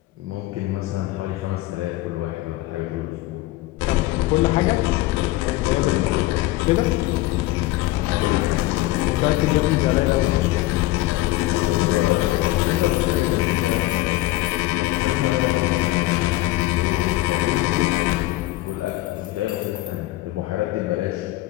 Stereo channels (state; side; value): quieter; right; 17.8 dB